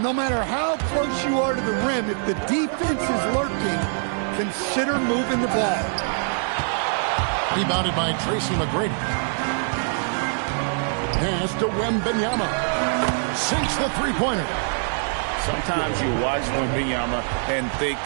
no matter how close you are to the rim, if the defense is lurking, consider moving the ball. Rebounded by Tracy McGrady. Pass to Wembanyama. Sinks the three-pointer. Sometimes you watch Wembanyama and think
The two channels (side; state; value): left; silent; digital silence